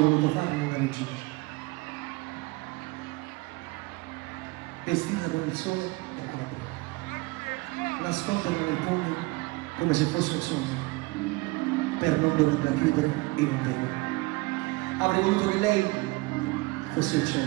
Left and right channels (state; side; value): quieter; left; 23.6 dB